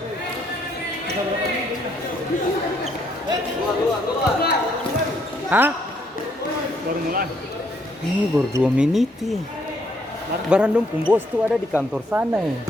Hah? Baru mulai. Ini baru 2 menit ya. Barandom bos tuh ada di kantor sana ya.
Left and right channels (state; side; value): normal; both; correlation 0.70